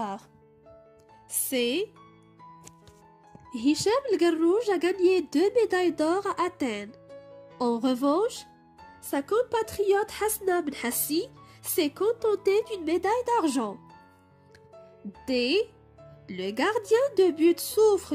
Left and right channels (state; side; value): identical; both; correlation 1.00